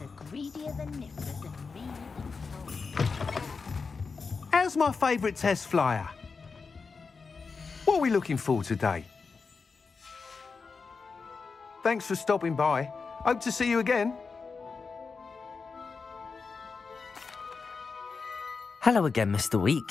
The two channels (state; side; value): quieter; right; 4.8 dB